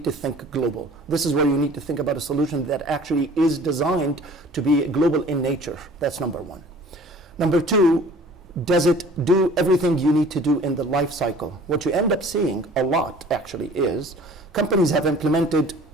to think global. This is where you need to think about a solution that actually is designed to be global in nature. That's number one. Number two, does it do everything you need to do in the life cycle? What you end up seeing a lot actually is companies have implemented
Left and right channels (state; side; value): normal; both; correlation 0.48